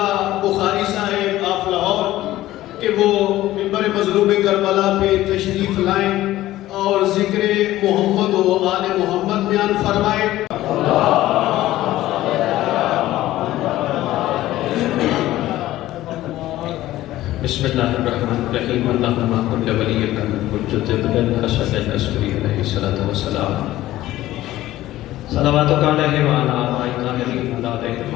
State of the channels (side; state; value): right; quieter; 15.3 dB